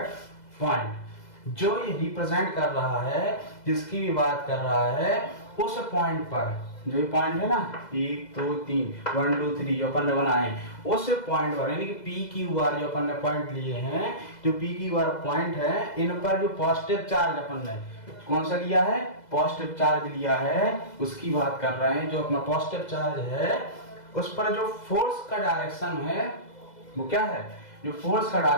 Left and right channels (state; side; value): late; right; 2.0 ms